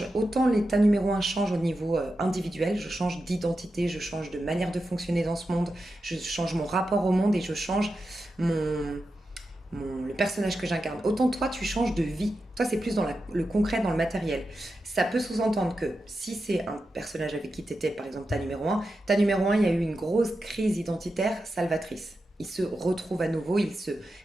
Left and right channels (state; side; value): normal; both; correlation 0.90